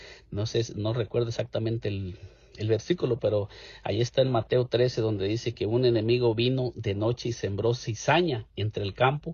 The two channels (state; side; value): identical; both; correlation 1.00